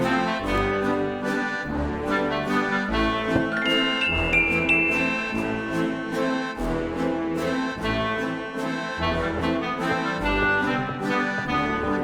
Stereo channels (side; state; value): both; identical; correlation 1.00